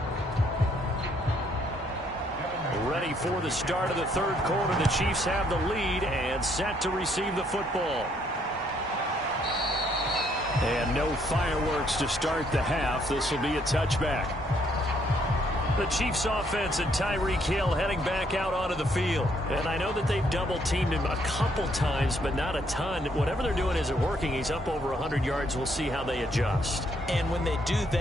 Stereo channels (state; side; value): normal; both; correlation 0.69